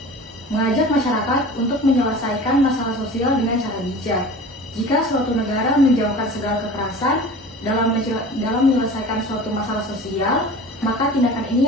Mengajak masyarakat untuk menyelesaikan masalah sosial dengan cara bijak. Jika suatu negara menjauhkan segala kekerasan dalam menyelesaikan suatu masalah sosial, maka tindakan ini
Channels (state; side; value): normal; both; correlation 0.39